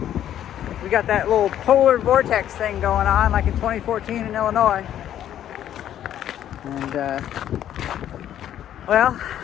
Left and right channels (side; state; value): right; quieter; 11.0 dB